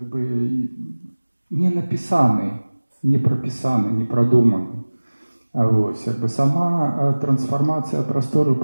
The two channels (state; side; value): inverted; both; correlation -1.00